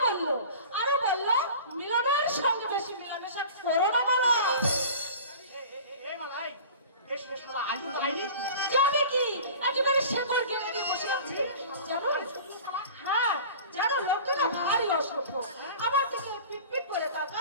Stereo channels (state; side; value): inverted; both; correlation -0.40